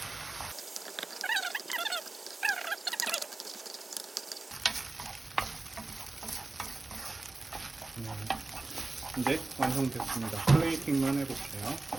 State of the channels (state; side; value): quieter; left; 3.2 dB